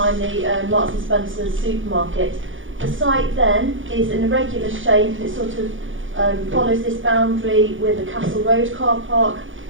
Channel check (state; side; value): late; left; 0.57 ms